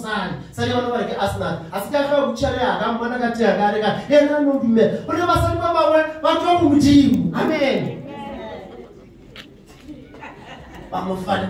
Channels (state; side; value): identical; both; correlation 1.00